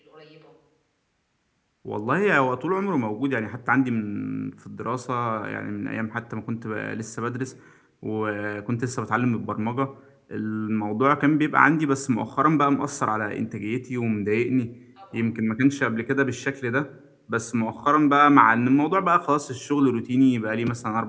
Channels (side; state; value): both; identical; correlation 1.00